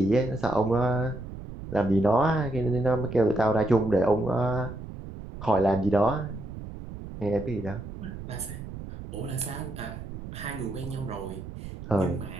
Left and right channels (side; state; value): right; noise; rumble, 11 dB below the sound